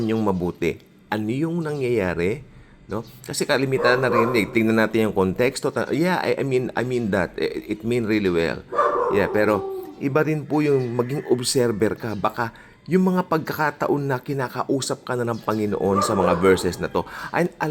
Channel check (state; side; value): identical; both; correlation 1.00